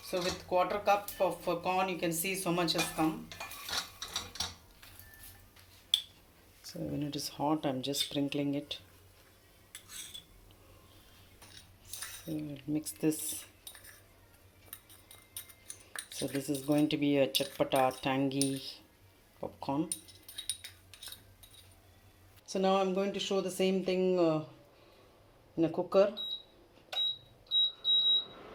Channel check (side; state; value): both; identical; correlation 1.00